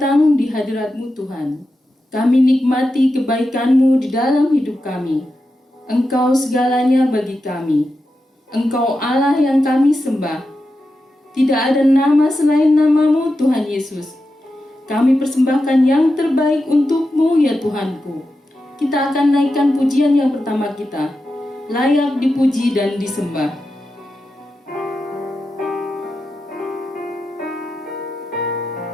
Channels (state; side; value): normal; both; correlation 0.90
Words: di hadirat-Mu Tuhan. Kami nikmati kebaikan-Mu di dalam hidup kami. Engkau segalanya bagi kami. Engkau Allah yang kami sembah. Tidak ada nama selain nama-Mu Tuhan Yesus. Kami persembahkan yang terbaik untuk-Mu ya Tuhanku. Kita akan naikkan pujian yang pertama kita. Layak dipuji dan disembah.